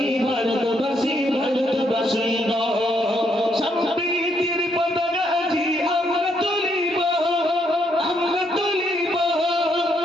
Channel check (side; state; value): both; normal; correlation 0.74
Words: ভারতবাসী ভারতবাসী গো। সম্প্রীতির পতাকা আজি আমরা তুলিব, আমরা তুলিব,